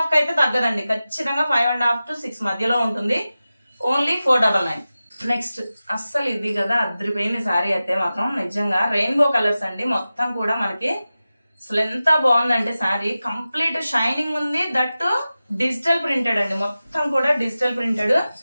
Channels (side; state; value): both; inverted; correlation -0.95